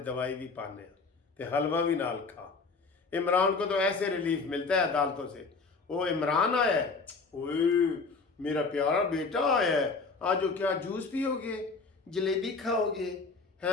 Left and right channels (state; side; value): quieter; right; 4.3 dB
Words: दवाई भी पाने ते हलवा भी नाल खा। इमरान को तो ऐसे रिलीफ मिलता है अदालतों से। वो इमरान आया है, ओए मेरा प्यारा बेटा आया है, आज क्या जूस पियोगे, जलेबी खाओगे?